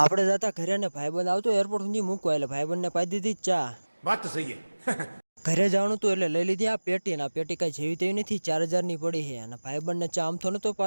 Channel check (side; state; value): both; inverted; correlation -1.00